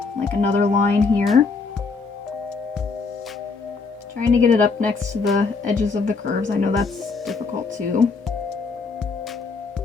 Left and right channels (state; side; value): quieter; right; 4.4 dB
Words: like another line here. Trying to get it up next to the edges of the curves. I know that's difficult too.